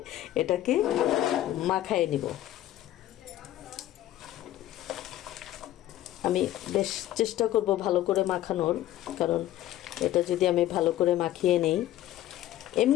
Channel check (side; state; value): right; quieter; 13.5 dB